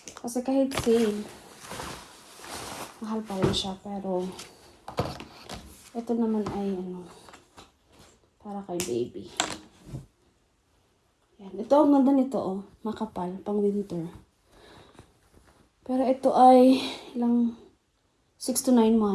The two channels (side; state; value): both; identical; correlation 1.00